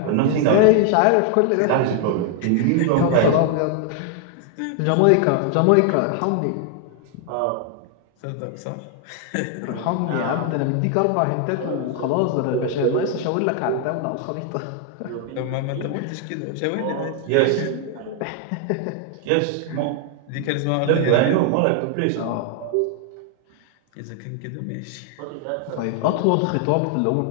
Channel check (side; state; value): both; different; correlation 0.00